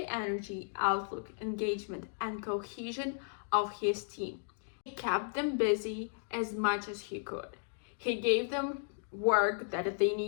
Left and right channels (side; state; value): right; silent; digital silence